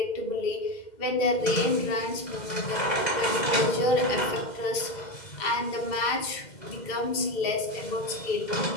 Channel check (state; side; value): late; right; 2.1 ms